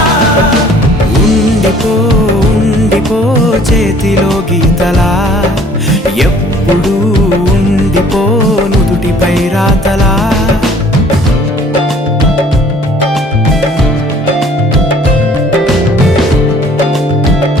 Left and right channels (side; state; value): both; normal; correlation 0.55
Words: ఉండిపో ఉండిపో చేతిలో గీతలా ఎప్పుడు ఉండిపో నుదుటిపై రాతలా